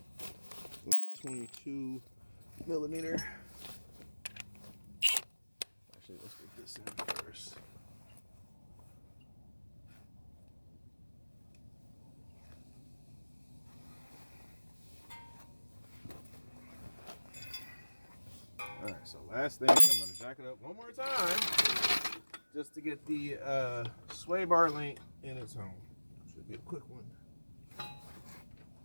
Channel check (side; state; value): both; inverted; correlation -1.00